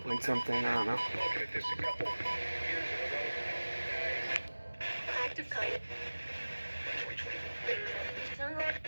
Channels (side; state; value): both; inverted; correlation -1.00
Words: point something, I don't know. Active kite.